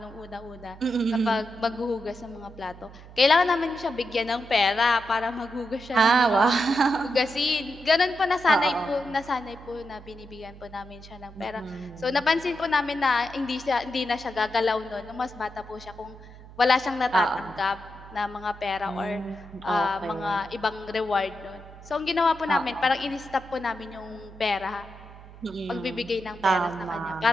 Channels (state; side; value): noise; right; hum, 18 dB below the sound